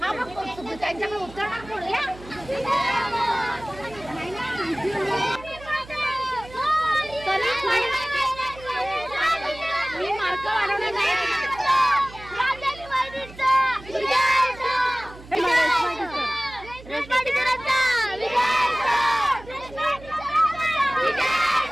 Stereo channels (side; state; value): right; noise; hum, 18 dB below the sound